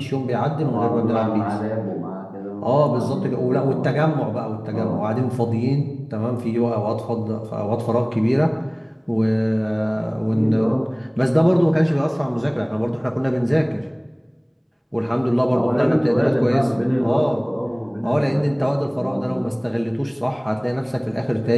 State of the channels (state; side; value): identical; both; correlation 1.00